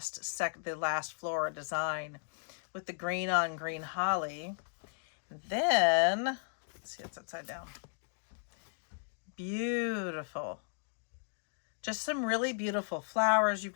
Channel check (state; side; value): silent; right; digital silence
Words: Flora design with the green on green holly. Then, let's see, it's upside down. Beautiful. Just some really beautiful flowers. You've